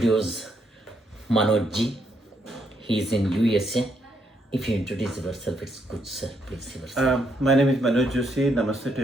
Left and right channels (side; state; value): both; normal; correlation 0.75